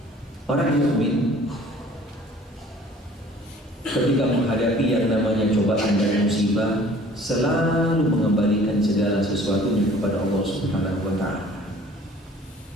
Orang mukmin ketika menghadapi yang namanya cobaan dan musibah selalu mengembalikan segala sesuatunya kepada Allah Subhanahu wa ta'ala.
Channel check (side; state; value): both; normal; correlation 0.51